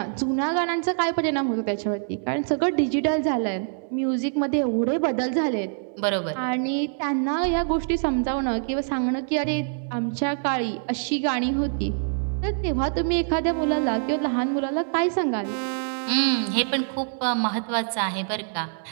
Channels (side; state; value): left; silent; digital silence